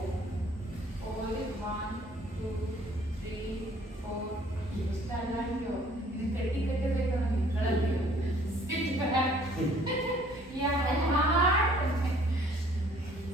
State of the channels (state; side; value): normal; both; correlation 0.57